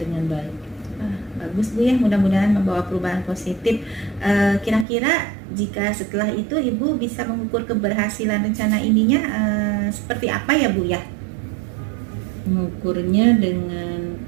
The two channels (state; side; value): drops out; left; at 4.9 s